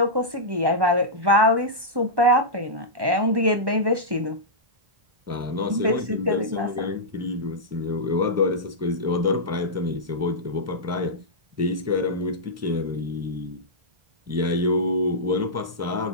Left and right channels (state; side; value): late; left; 1.1 ms